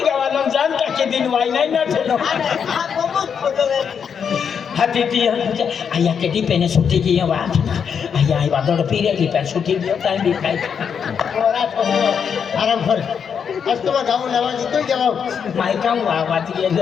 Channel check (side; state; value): right; quieter; 7.1 dB